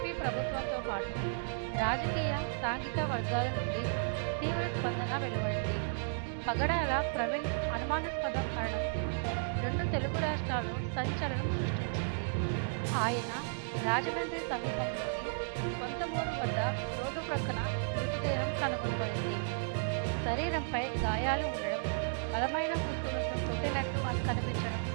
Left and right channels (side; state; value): left; silent; digital silence